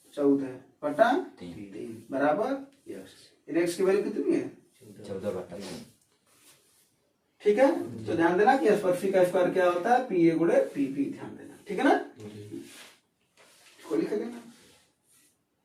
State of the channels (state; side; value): identical; both; correlation 1.00